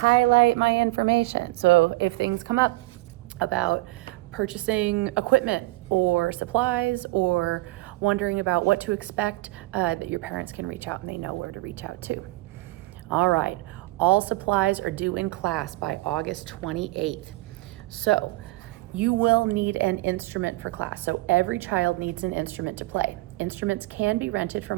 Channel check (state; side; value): quieter; left; 20.1 dB